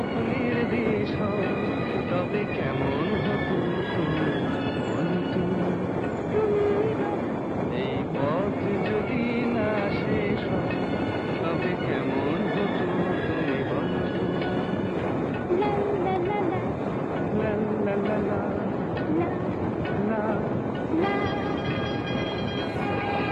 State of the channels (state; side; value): identical; both; correlation 1.00